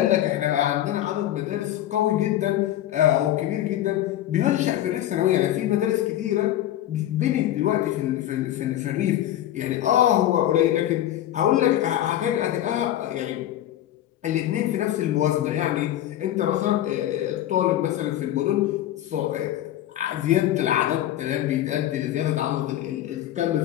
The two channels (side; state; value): right; quieter; 12.8 dB